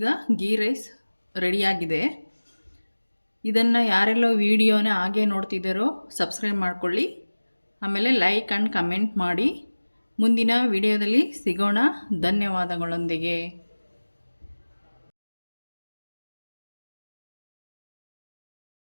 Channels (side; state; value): both; inverted; correlation -1.00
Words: ಗೀ ರೈಸ್ ರೆಡಿಯಾಗಿದೆ. ಇದನ್ನು ಯಾರೆಲ್ಲ ವಿಡಿಯೋನ ಹಾಗೆ ನೋಡ್ತಿದ್ದಾರೋ ಸಬ್ಸ್ಕ್ರೈಬ್ ಮಾಡ್ಕೊಳ್ಳಿ. ಆಮೇಲೆ ಲೈಕ್ ಆ್ಯಂಡ್ ಕಮೆಂಟ್ ಮಾಡಿ. ಮುಂದಿನ ವಿಡಿಯೋದಲ್ಲಿ ಸಿಗೋಣ. ಧನ್ಯವಾದಗಳೊಂದಿಗೆ.